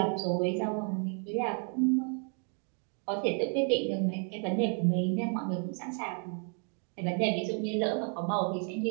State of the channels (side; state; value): left; quieter; 39.6 dB